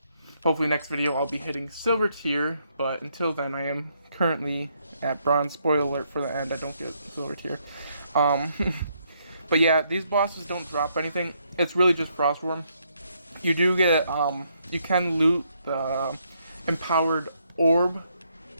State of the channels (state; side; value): inverted; both; correlation -0.74